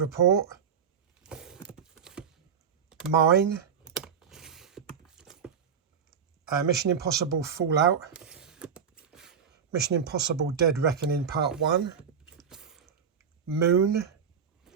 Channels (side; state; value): left; quieter; 7.0 dB